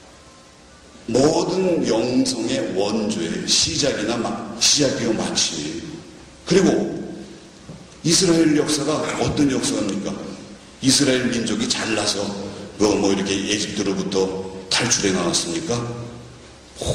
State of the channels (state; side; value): identical; both; correlation 1.00